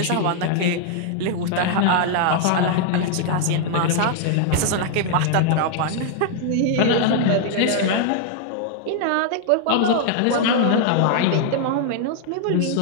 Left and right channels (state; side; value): different; both; correlation 0.00